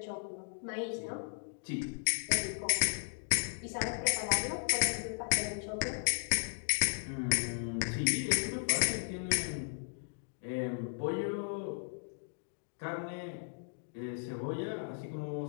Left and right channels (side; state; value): right; silent; digital silence